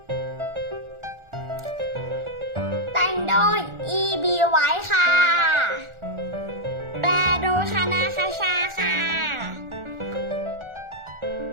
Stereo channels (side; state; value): left; late; 1.4 ms